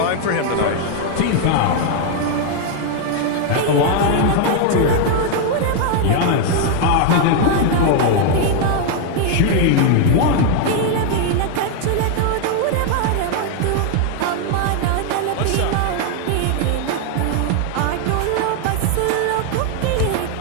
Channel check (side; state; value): both; different; correlation 0.00